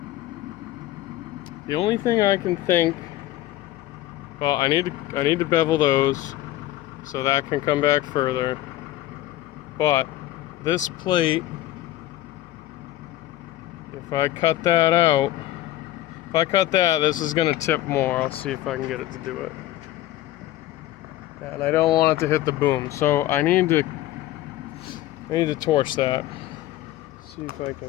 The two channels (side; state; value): right; quieter; 14.8 dB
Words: The only thing I can think, well, I need to bevel those so that can come back further. But this plate, if I cut that out, if I cut that, this is gonna tip more. I'll see if I can get it to do it. And I don't want it to hit the boom, so I need to torch that. See if I